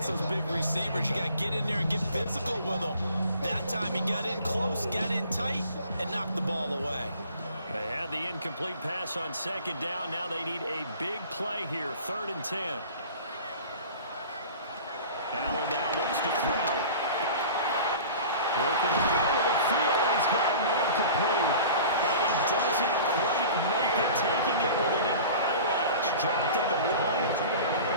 those big receivers. You got to get in there and get physical with them. That time he got in close, got in tight, and knocked the ball away. They had the incomplete pass on 2nd down. Now they need a big play here, 3rd and 10. Allen now looks to throw. Working the middle of the field, and he's got man complete. And he doesn't quite make it, taking it within an eyelash. Dropped at the 1.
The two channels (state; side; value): inverted; both; correlation -0.42